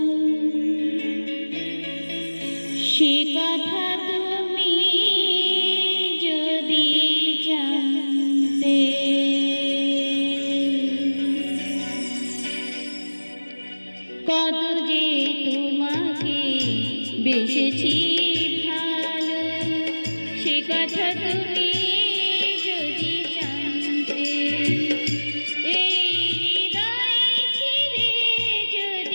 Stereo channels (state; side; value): inverted; both; correlation -1.00